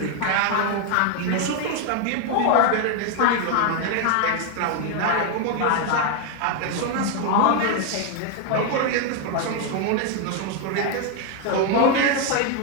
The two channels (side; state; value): both; different; correlation 0.01